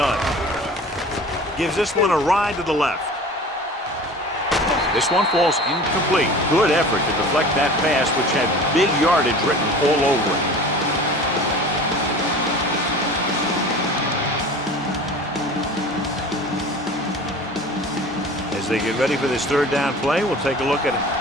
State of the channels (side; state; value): both; normal; correlation 0.40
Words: Gives this one a ride to the left. This one falls incomplete. Good effort to deflect that pass, which had big yardage written all over it. As they get ready for this 3rd down play, we'll take a look at